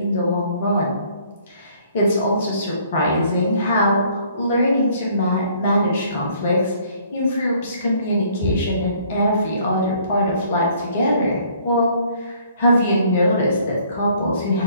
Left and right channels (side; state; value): both; inverted; correlation -0.60